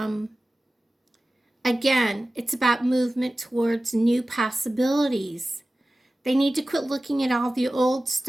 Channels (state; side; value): normal; both; correlation 0.96